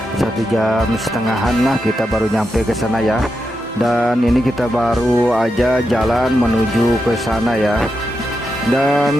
1,5 jam lah kita baru nyampe ke sana ya. Dan ini kita baru aja jalan menuju ke sana ya.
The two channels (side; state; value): both; normal; correlation 0.86